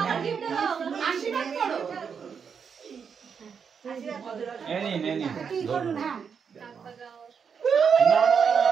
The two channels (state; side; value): quieter; left; 6.6 dB